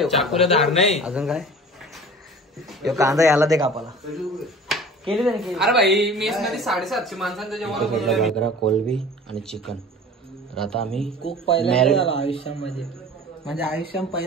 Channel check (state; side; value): normal; both; correlation 0.42